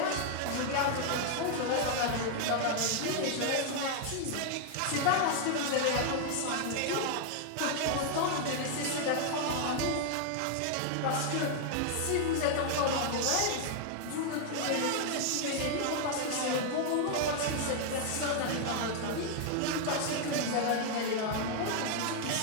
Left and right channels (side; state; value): both; different; correlation 0.00